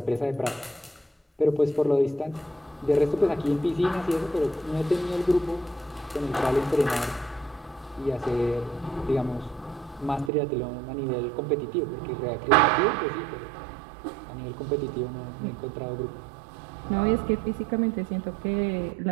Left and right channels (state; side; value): drops out; left; at 10.3 s